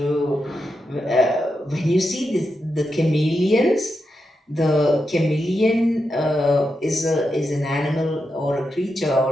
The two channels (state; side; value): normal; both; correlation 0.87